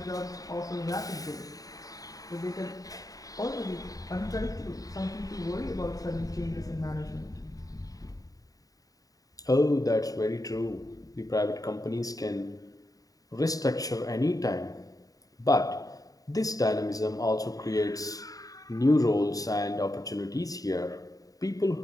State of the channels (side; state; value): right; late; 0.17 ms